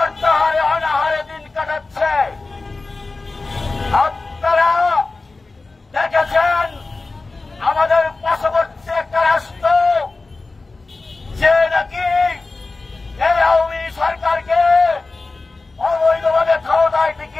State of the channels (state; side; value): quieter; right; 3.6 dB